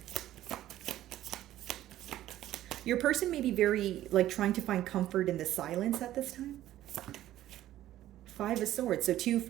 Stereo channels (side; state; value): left; quieter; 13.5 dB